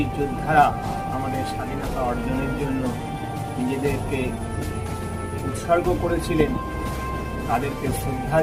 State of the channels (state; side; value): identical; both; correlation 1.00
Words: যোদ্ধারা আমাদের স্বাধীনতা অর্জনের জন্য নিজেদেরকে উৎসর্গ করেছিলেন তাদেরকে শ্রদ্ধা